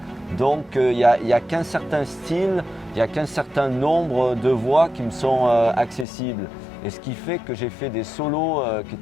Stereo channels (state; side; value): drops out; right; at 6.1 s